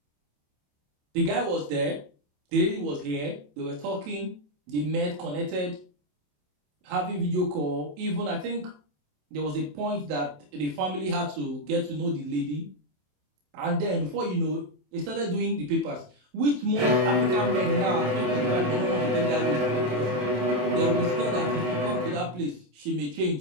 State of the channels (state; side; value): late; left; 27 ms